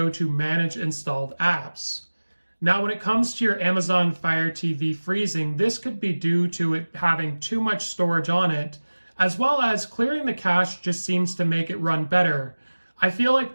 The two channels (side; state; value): both; inverted; correlation -1.00